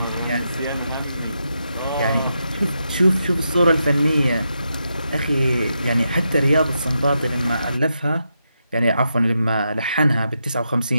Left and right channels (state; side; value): inverted; both; correlation -0.85